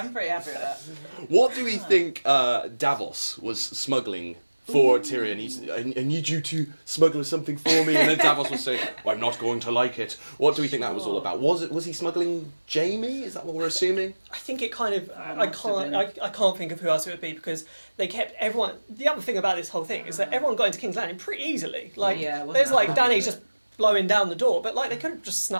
pretty happy with that. What do we think Davos was smuggling for Tyrion? I need you to smuggle something for me, and then Davos was saying, well, I'm not going to like it. What do we think that was all about? Was he smuggling Jaime? Is that what we're assuming? I think it kind of. I can't think of who else it would be, because they kept everyone. The other thing about this whole thing is that everyone got into King's Landing pretty easily. Like there's like Dany just blowing down the door, but like they could have just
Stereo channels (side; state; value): both; inverted; correlation -1.00